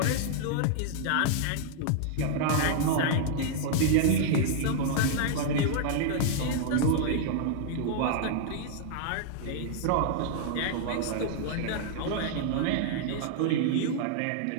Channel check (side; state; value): both; different; correlation -0.01